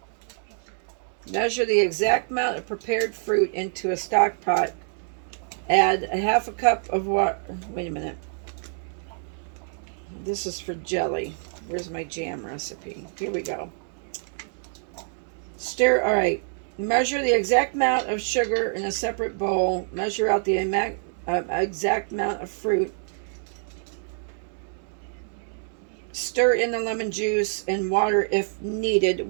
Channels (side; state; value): left; silent; 61 dB below the other